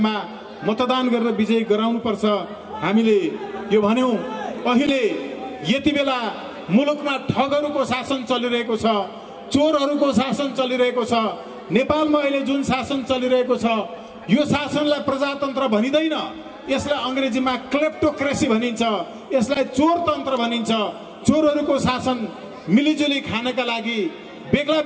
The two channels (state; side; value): identical; both; correlation 1.00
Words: मतदान गरेर विजयी गराउनु पर्छ। हामीले यो भन्यौं। अहिले यति बेला मुलुकमा ठगहरूको शासन चलिरहेको छ, चोरहरूको शासन चलिरहेको छ। नेपालमा अहिले जुन शासन चलिरहेको छ यो शासनलाई प्रजातन्त्र भनिदैन, यसलाई अंग्रेजीमा क्लेप्टोक्रेसी भनिन्छ, यसलाई चोरतन्त्र भनिन्छ। चोरहरूको शासन मिलिजुली खानका लागि बेग्ला